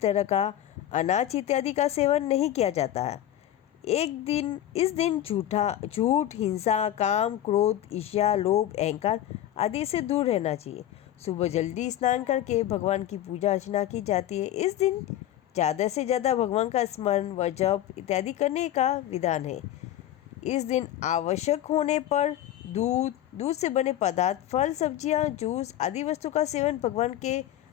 का अनाज इत्यादि का सेवन नहीं किया जाता है। इस दिन झूठ, हिंसा, काम, क्रोध, ईर्ष्या, लोभ, अहंकार आदि से दूर रहना चाहिए। सुबह जल्दी स्नान करके भगवान की पूजा अर्चना की जाती है। इस दिन ज़्यादा से ज़्यादा भगवान का स्मरण व जप इत्यादि करने का विधान है। इस दिन आवश्यक होने पर दूध से बने पदार्थ, फल, सब्जियां, जूस आदि वस्तु का सेवन भगवान के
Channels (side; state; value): right; quieter; 12.2 dB